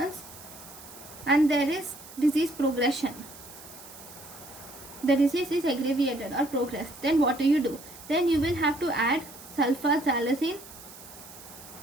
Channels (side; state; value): right; noise; hiss, 17 dB below the sound